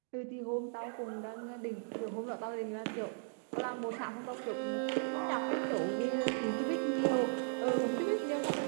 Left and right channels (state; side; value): silent; left; digital silence